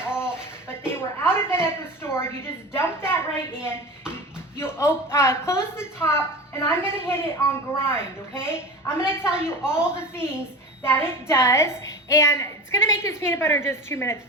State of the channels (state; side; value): normal; both; correlation 0.32